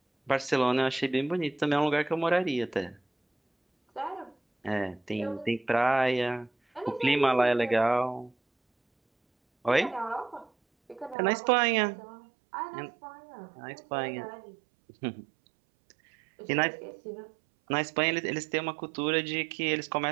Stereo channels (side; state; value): left; drops out; at 11.2 s